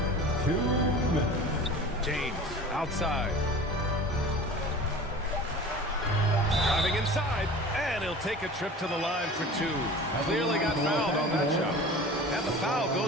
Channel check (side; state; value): both; normal; correlation 0.38